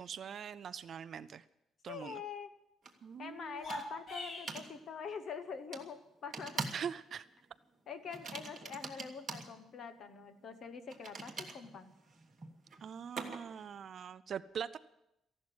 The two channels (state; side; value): normal; both; correlation 0.64